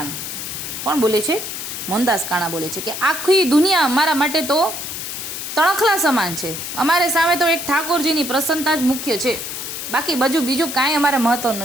કોણ બોલે છે? મોહનદાસ કાણા બોલે છે કે આખી દુનિયા અમારા માટે તો તણખલા સમાન છે. અમારે સામે તો એક ઠાકોરજીની પ્રસન્નતા જ મુખ્ય છે, બાકી બીજું કાંઈ અમારે મહત્વ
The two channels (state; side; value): noise; left; hiss, 6 dB below the sound